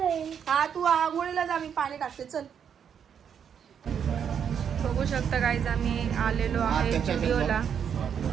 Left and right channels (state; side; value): quieter; left; 7.9 dB